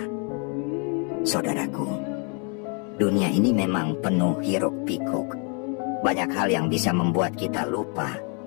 Saudaraku, dunia ini memang penuh hiruk-pikuk. Banyak hal yang bisa membuat kita lupa,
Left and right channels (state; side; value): quieter; right; 37.2 dB